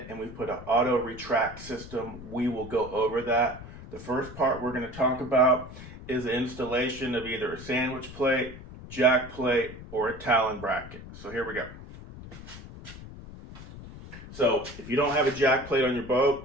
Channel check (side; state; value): left; noise; rumble, 14 dB below the sound